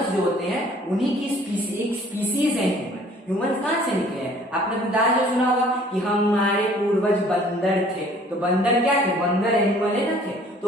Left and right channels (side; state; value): both; normal; correlation 0.54